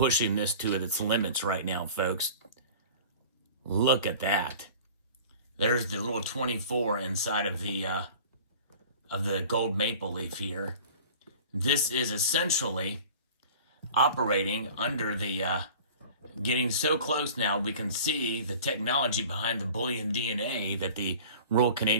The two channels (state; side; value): inverted; both; correlation -0.42